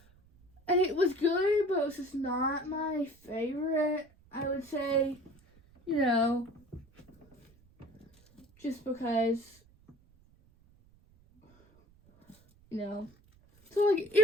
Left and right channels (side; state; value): right; noise; rumble, 30 dB below the sound